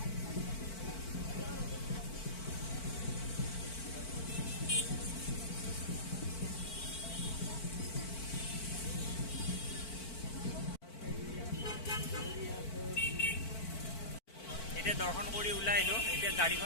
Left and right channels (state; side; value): late; right; 4.5 ms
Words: এতিয়া দৰ্শন কৰি ওলাই আহিলোঁ। এতিয়া